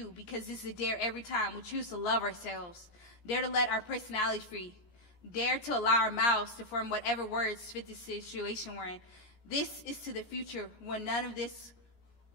because this is a dare every time we choose to love ourselves. Dare to let our personality free. Dare to allow our mouths to form whatever words fit the situation we're in. This is to the future when none of this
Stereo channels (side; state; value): right; late; 14 ms